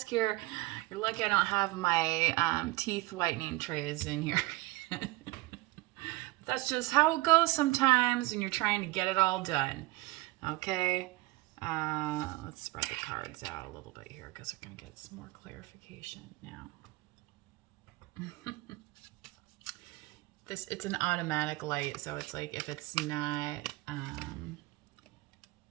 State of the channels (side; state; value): left; quieter; 20.9 dB